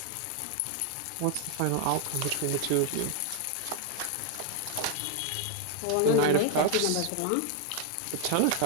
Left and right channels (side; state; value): both; different; correlation 0.01